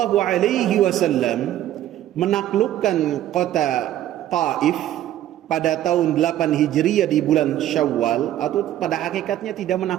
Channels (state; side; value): quieter; left; 12.6 dB